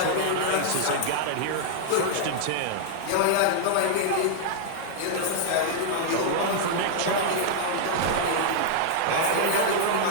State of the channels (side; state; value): both; different; correlation -0.01